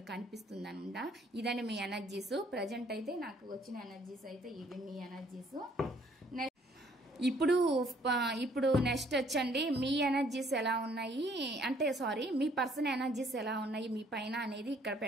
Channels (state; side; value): normal; both; correlation 0.63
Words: కనిపిస్తుంది అనమాట. ఇదని మీ ఎనర్జీస్. ప్రజెంట్ అయితే నాకు వచ్చిన ఎనర్జీస్ అయితే ఇవి మీ ఎనర్జీస్. ఇప్పుడు నెక్స్ట్ వచ్చండి మీ ఎనర్జీస్ ఎలా ఉన్నాయి అంటే మీ పర్సన్ ఎనర్జీస్ ఎలా ఉన్నాయి మీ పైన అనేది ఇక్కడ